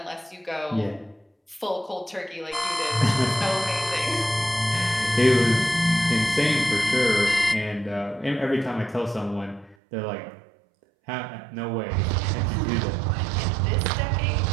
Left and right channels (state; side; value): drops out; left; at 9.8 s